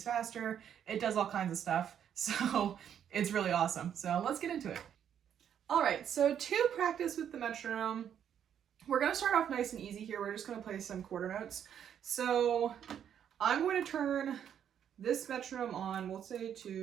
faster. It does all kinds of stuff, so it's really awesome. So let's get into it. All right, so to practice with the metronome, we're going to start off nice and easy here. We're just going to play some quarter notes. So I'm going to turn this metronome on, we'll say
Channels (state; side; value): quieter; left; 9.1 dB